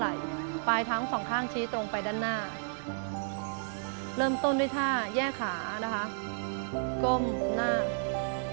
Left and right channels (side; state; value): left; silent; digital silence